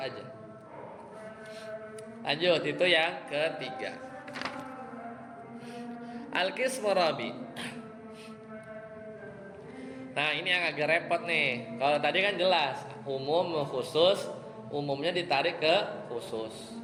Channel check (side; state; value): both; identical; correlation 1.00